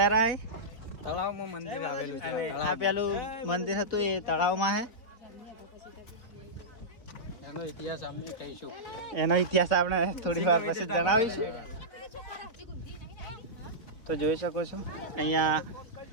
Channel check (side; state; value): right; late; 3.8 ms